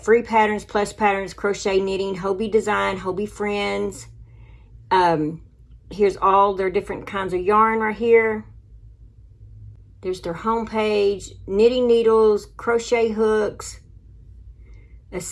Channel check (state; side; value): identical; both; correlation 1.00